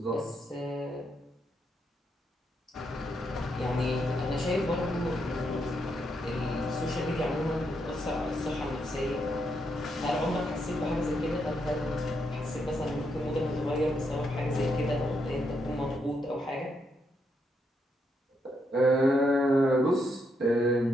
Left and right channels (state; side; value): normal; both; correlation 0.79